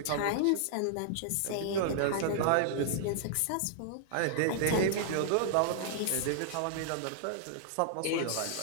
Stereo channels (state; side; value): different; both; correlation -0.01